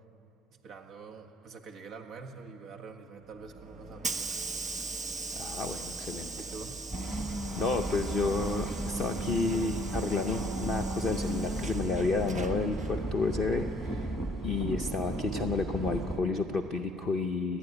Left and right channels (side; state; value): both; normal; correlation 0.62